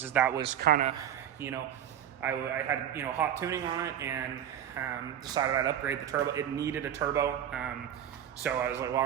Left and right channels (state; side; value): quieter; left; 10.2 dB